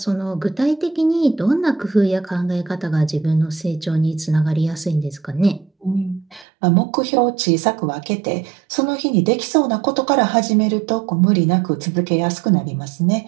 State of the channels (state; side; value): drops out; left; at 6.5 s